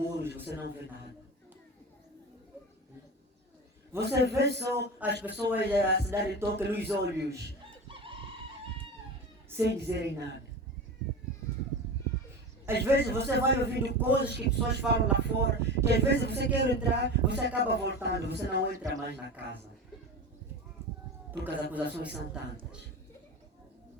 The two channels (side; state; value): both; normal; correlation 0.28